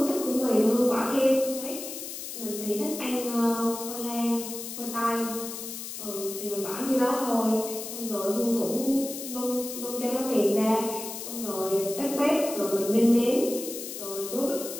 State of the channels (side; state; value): left; noise; hiss, 8 dB below the sound